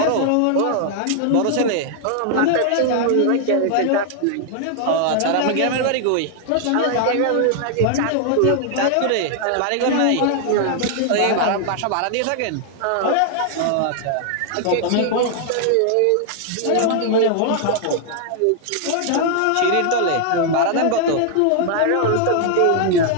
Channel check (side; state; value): both; different; correlation 0.00